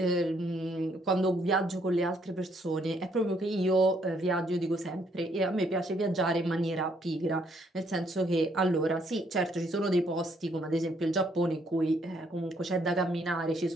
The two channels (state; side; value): normal; both; correlation 0.69